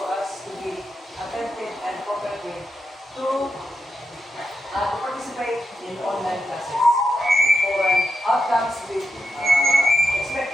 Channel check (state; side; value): normal; both; correlation 0.87